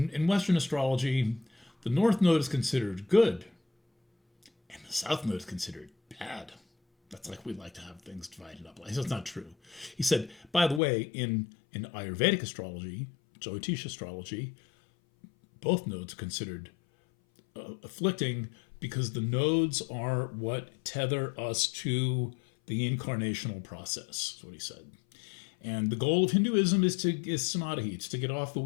Western astrology, the North Node is considered good, and the South Node is considered bad. That's like we like to have things divided up. That's not true. He said, by the way, in Ayurvedic astrology, Jyotish astrology, both nodes are considered afflicting because the nodes are what tether us to the incarnational process, is what he said. And the goal of Hinduism is samadhi, it's to get off the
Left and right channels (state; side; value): drops out; right; at 10.8 s